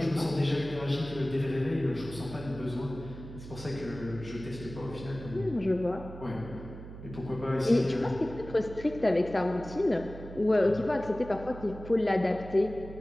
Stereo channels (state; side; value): noise; right; hum, 13 dB below the sound